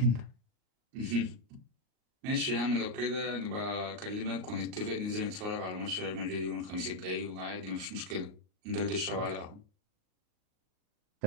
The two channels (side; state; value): left; late; 38 ms